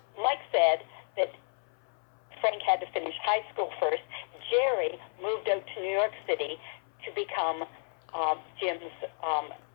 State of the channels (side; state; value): right; silent; 57 dB below the other